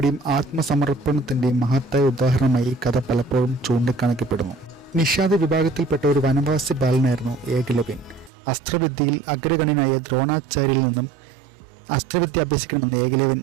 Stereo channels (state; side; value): drops out; left; at 8.3 s